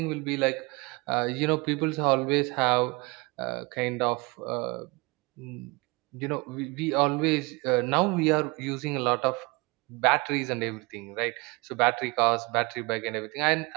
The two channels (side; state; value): left; quieter; 26.7 dB